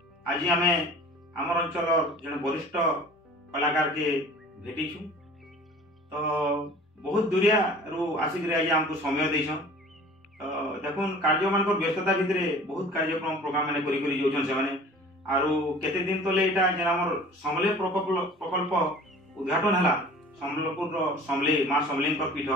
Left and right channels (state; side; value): normal; both; correlation 0.45